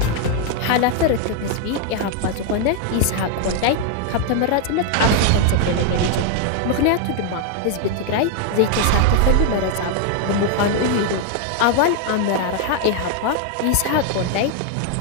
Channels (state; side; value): different; both; correlation 0.00